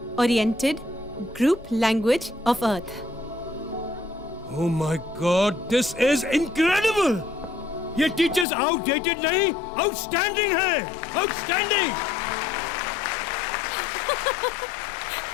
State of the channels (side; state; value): right; drops out; at 8.5 s